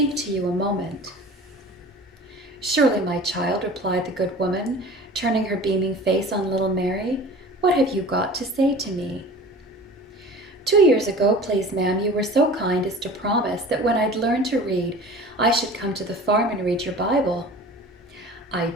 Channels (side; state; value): both; normal; correlation 0.41